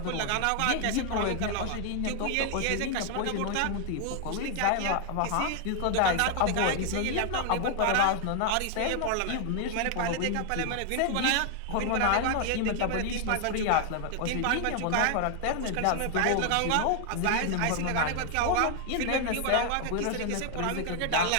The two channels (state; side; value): different; both; correlation 0.00